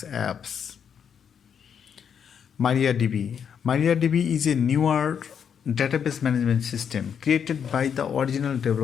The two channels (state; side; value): quieter; right; 7.6 dB